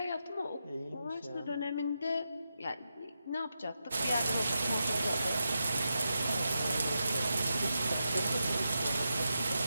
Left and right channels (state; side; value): inverted; both; correlation -0.87